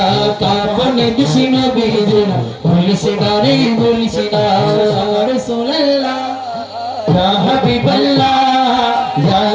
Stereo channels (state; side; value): identical; both; correlation 1.00